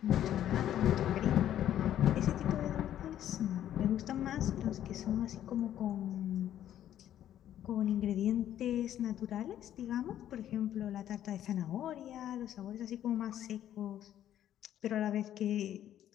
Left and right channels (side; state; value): right; quieter; 11.4 dB